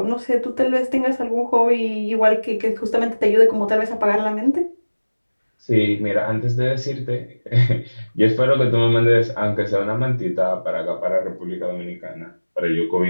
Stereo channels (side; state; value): both; inverted; correlation -1.00